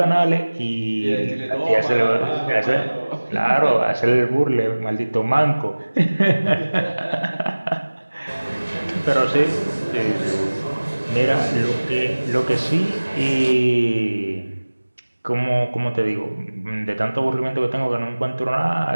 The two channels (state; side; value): inverted; both; correlation -1.00